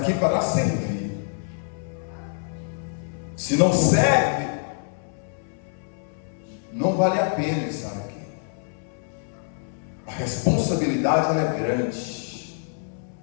para servir. Se não serve, não vale a pena estar aqui. A responsabilidade ela é grande.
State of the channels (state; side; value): silent; right; 61 dB below the other